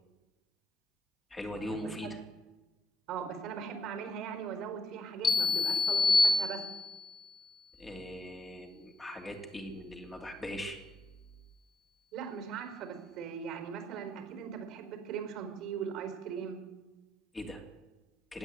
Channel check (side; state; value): both; normal; correlation 0.78